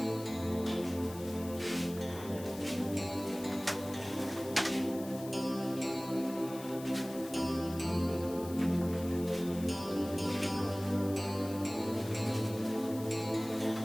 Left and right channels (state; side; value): noise; left; hiss, 16 dB below the sound